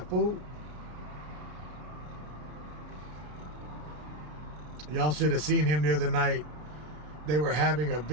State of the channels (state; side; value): late; left; 33 ms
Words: fool. Y'all should have seen him the other night. They were having a